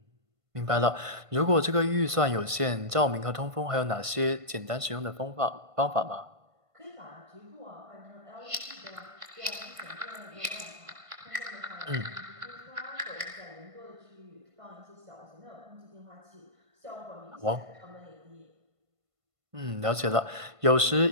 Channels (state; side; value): late; left; 1.5 ms